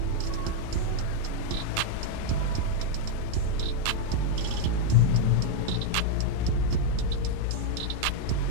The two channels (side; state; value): both; different; correlation 0.00